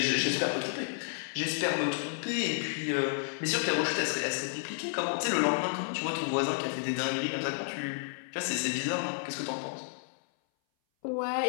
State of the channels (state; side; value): silent; right; 57 dB below the other